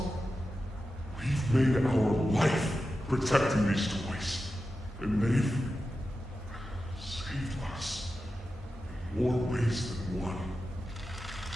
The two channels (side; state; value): both; normal; correlation 0.92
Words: We've made our life protecting these toys. And they've saved us in more ways than one.